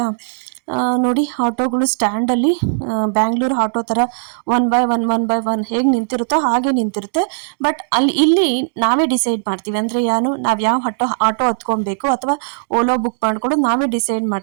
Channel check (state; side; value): silent; left; digital silence